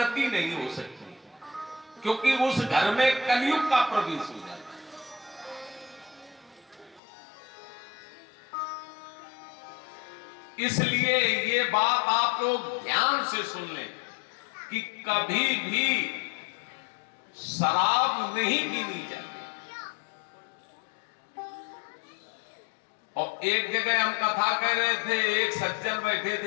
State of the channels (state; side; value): drops out; right; at 7.0 s